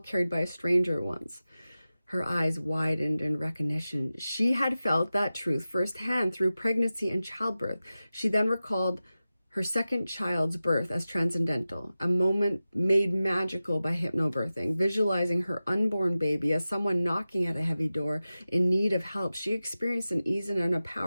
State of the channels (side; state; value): both; inverted; correlation -0.95